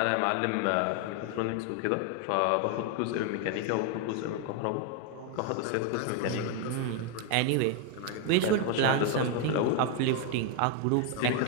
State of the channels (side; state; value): both; different; correlation 0.01